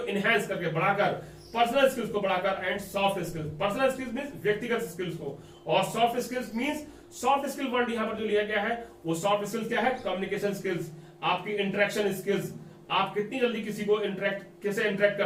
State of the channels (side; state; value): both; identical; correlation 1.00